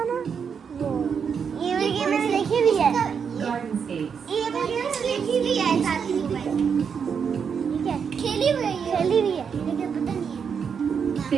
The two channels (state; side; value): quieter; left; 6.7 dB